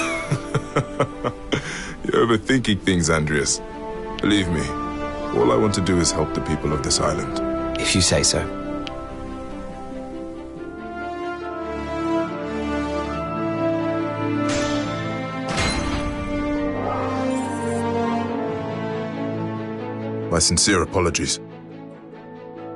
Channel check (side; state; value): both; identical; correlation 1.00